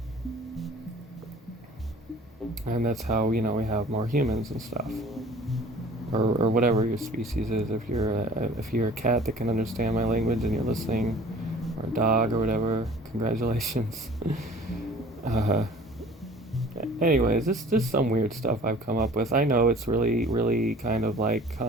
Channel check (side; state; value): both; normal; correlation 0.48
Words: And that's how, you know, we have more humans and stuff. Or whatever your species is. If you're a cat that can understand my language and you're listening, or a dog or whatever, congratulations. uh, Anyways, this is some weird stuff I've come up with. I know it's really, really kind of like